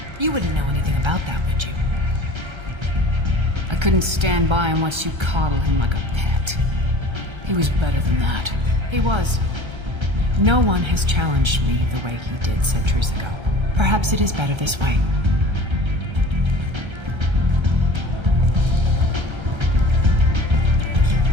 You wouldn't know anything about that, would you? I couldn't stand by and watch you coddle him like a pet. He was better than that. He was. No one has challenged me the way he did centuries ago. Perhaps it is better this way.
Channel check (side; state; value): left; late; 1.3 ms